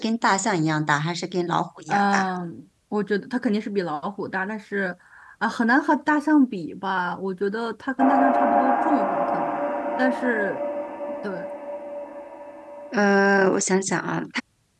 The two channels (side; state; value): both; identical; correlation 1.00